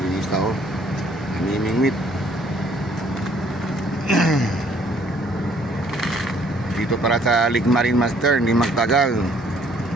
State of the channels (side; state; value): both; normal; correlation 0.62